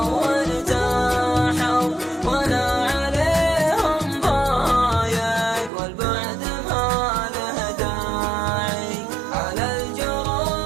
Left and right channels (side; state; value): left; drops out; at 5.7 s